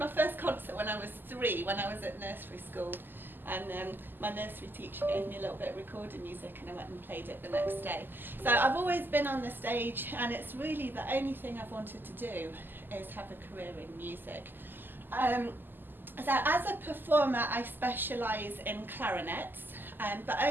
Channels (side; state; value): left; late; 0.092 ms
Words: first concert when I was 3, when I was at nursery school. And my nursery teacher gave me a little bit of recorded music, and I went and played it the next day. So I've always been on the stage, and it's really the only thing I've wanted to do is have a career in music. So as a performer, I specialise in clarinets, but